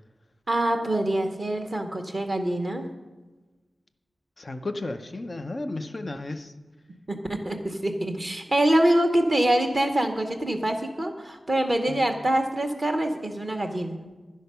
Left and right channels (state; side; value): normal; both; correlation 0.95